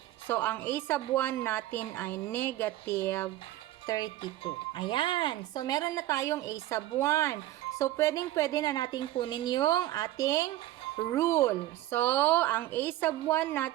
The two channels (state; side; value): quieter; left; 15.0 dB